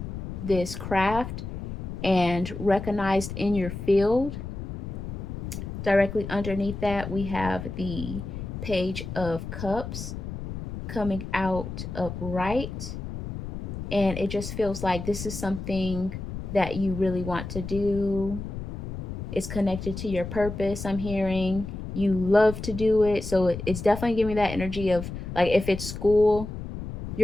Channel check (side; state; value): left; noise; rumble, 7 dB below the sound